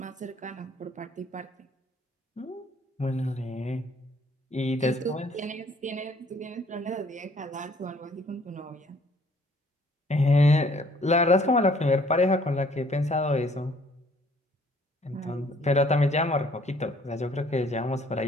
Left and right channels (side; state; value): both; normal; correlation 0.60